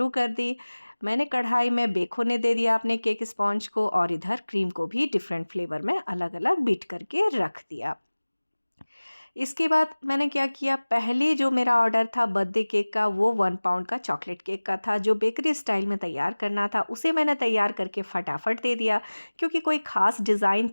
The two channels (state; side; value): inverted; both; correlation -1.00